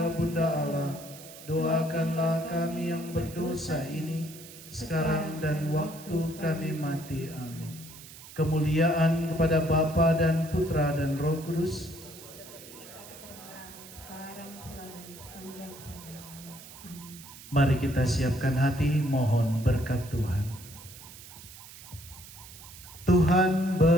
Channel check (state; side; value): noise; right; hiss, 17 dB below the sound